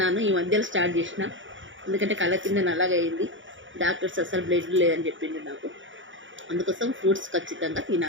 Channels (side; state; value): left; late; 0.56 ms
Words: ఈ మధ్యలో స్టార్ట్ చేసిన, ఎందుకంటే కళ్ళ కింద నల్లగా అయింది. డాక్టర్స్ అసలు బ్లడ్ లేదని చెప్పిండు నాకు. అందుకోసం ఫ్రూట్స్ ఖచ్చితంగా